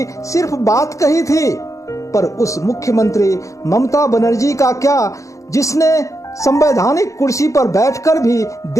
सिर्फ बात कही थी। पर उस मुख्यमंत्री ममता बनर्जी का क्या, जिसने संवैधानिक कुर्सी पर बैठकर भी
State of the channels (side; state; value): right; late; 0.15 ms